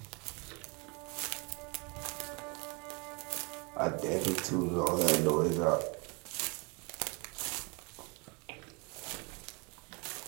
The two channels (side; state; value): left; quieter; 31.2 dB